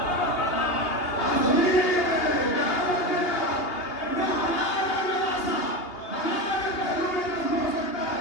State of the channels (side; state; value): right; late; 2.8 ms